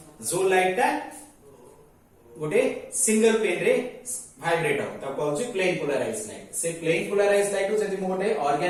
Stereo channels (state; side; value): identical; both; correlation 1.00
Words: जो लाइट ता गोटे सिंगल पेन रे वाइब्रेट हो तब कहउची प्लेन पोलाराइज लाइट से प्लेन पोलाराइज लाइट को जदि मु गोटे